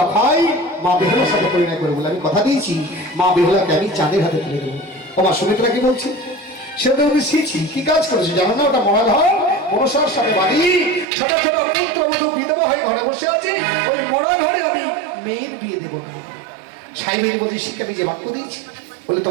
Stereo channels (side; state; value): left; drops out; at 11.1 s